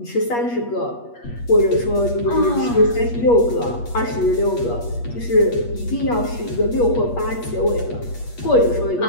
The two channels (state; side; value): late; right; 8.4 ms